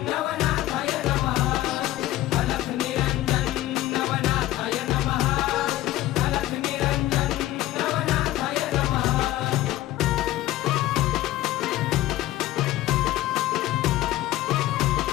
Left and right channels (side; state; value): right; quieter; 15.5 dB